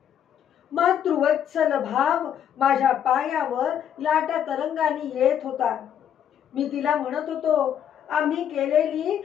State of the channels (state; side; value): quieter; right; 9.4 dB